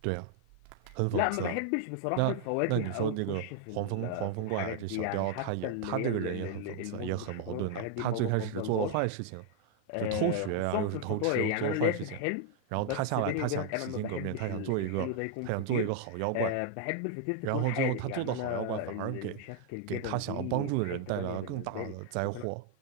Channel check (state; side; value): different; both; correlation 0.00